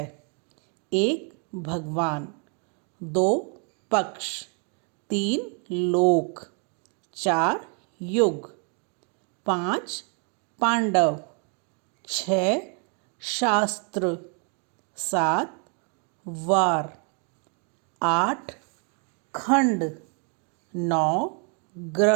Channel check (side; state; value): left; quieter; 39.1 dB